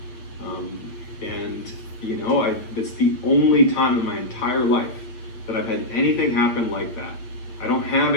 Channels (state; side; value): late; right; 8.5 ms